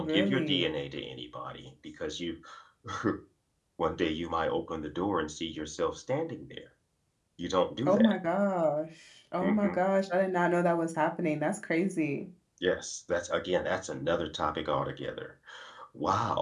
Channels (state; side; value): identical; both; correlation 1.00